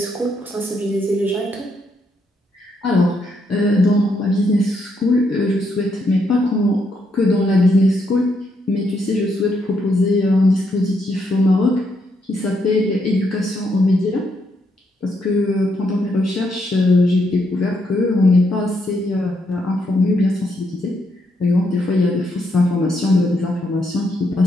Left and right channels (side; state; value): both; normal; correlation 0.77